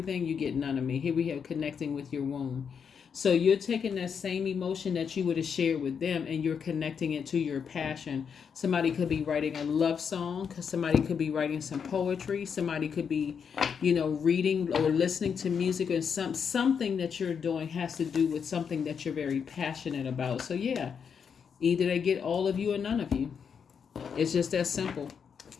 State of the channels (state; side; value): quieter; right; 6.8 dB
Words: you get none of me. Here we have connecting with your womb. So you're taking that same emotion that you would have shared with them, and you're connecting it to your passion. Somebody could be writing a love song. Somebody could be writing some poetry. Somebody could be, reading or listening to music, or something that you're doing has to do with something that you're very passionate about. So yeah. Either they get all of you or none of you. It's just that simple.